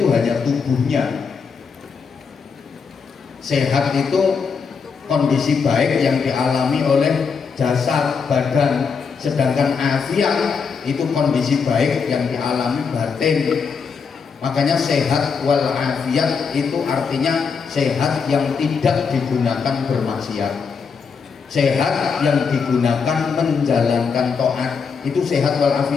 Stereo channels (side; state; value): right; quieter; 5.7 dB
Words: hanya tubuhnya. Sehat itu kondisi baik yang dialami oleh jasad, badan. Sedangkan afiat itu kondisi baik yang dialami batin. Makanya sehat wal afiat itu artinya sehat yang tidak digunakan bermaksiat, sehat yang digunakan menjalankan taat, itu sehat wal